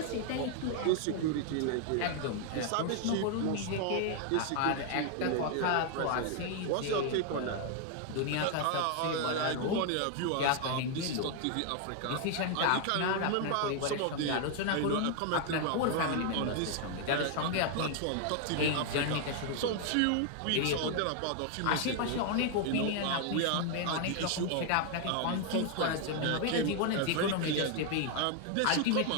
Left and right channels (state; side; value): different; both; correlation 0.00